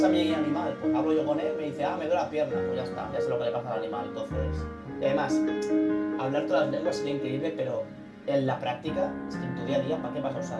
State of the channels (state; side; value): identical; both; correlation 1.00